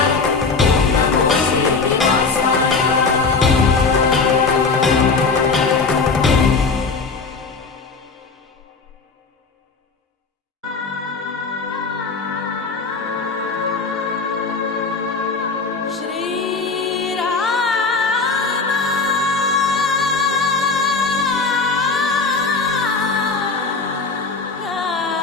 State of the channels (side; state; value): right; quieter; 4.4 dB